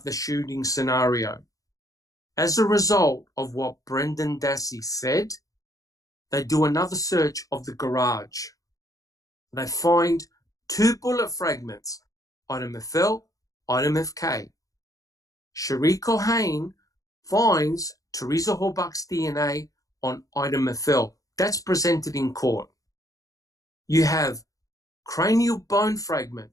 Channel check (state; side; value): late; right; 0.17 ms